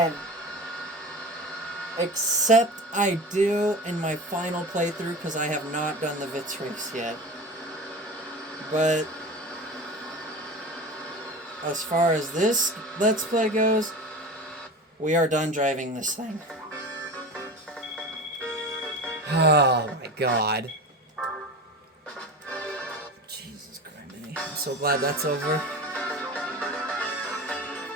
Except I do in my final playthrough, because I have not done the Vitz race yet. But as far as this Let's Play goes, we are done driving this thing. Oh my god. Jesus Christ. I'm so glad that's over.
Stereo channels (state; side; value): normal; both; correlation 0.32